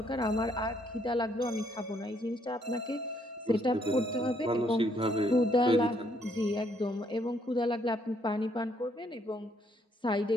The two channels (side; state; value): both; normal; correlation 0.70